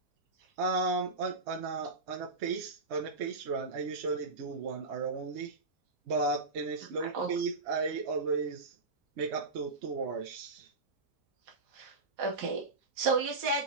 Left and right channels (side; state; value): left; quieter; 3.5 dB